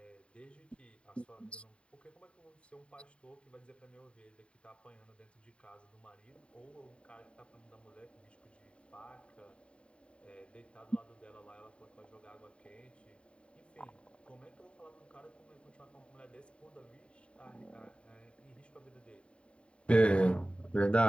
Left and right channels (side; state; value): right; late; 0.058 ms